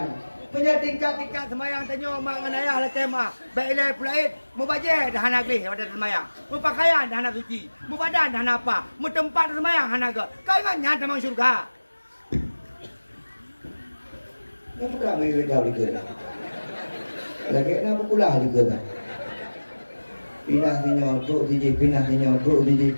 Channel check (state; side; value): inverted; both; correlation -1.00